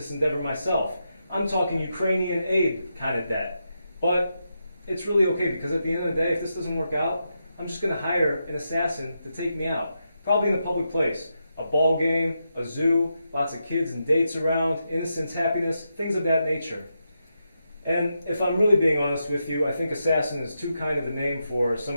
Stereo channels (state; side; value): inverted; both; correlation -0.85